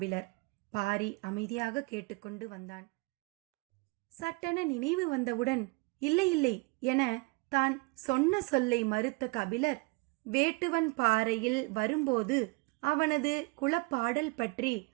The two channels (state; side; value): quieter; left; 27.9 dB